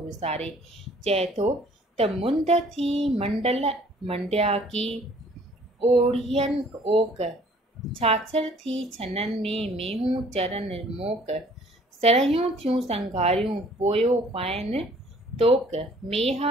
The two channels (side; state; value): both; normal; correlation 0.56